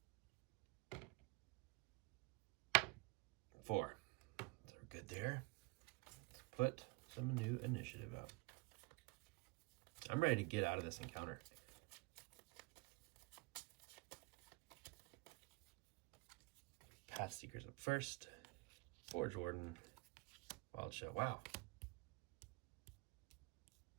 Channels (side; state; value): left; quieter; 25.5 dB